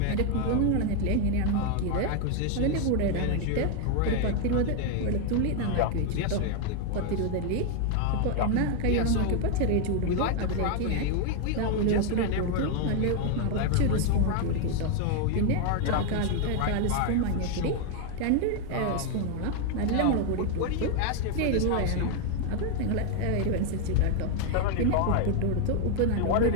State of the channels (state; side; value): different; both; correlation 0.01